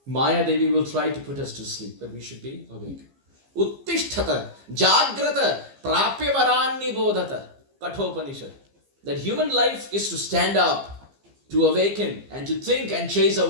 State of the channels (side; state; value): left; late; 15 ms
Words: Maya Devi will try to put us to sleep, but we should be awake. Uttishtata, Jagrata, Prapyavaranni Bodhata, Kathopanishad. That human life is to stand up, to awaken, and to think and chase